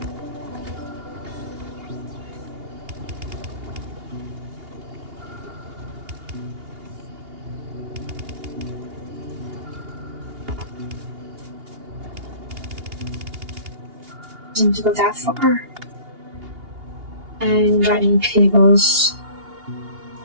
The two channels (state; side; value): late; left; 2.8 ms